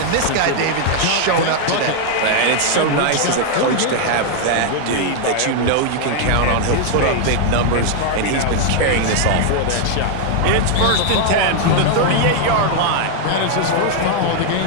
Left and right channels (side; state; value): both; different; correlation 0.00